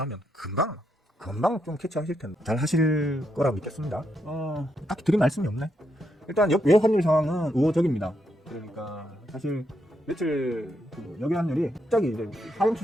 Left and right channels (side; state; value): both; normal; correlation 0.80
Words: 하면 금방 좀 캐치하실 텐데 잘 하실 거라고 믿겠습니다. 딱히 드릴 말씀이 없네. 일단 외 환율 상황은 우호적입니다. 그러니까 사실 며칠 여기 환율이 갑자기 이제 하향